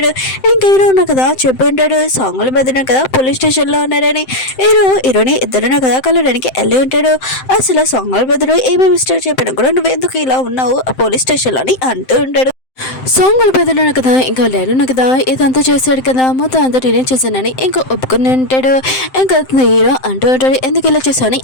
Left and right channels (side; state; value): right; late; 7.7 ms